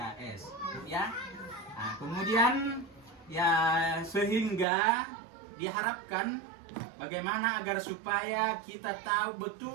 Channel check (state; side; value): drops out; left; at 4.7 s